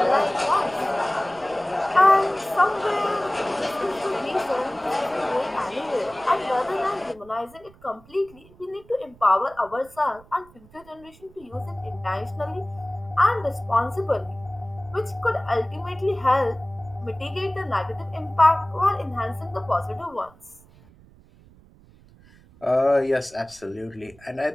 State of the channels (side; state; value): right; noise; rumble, 25 dB below the sound